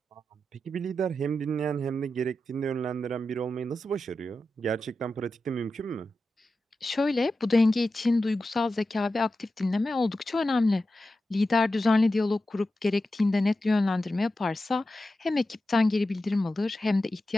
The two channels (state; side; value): normal; both; correlation 0.91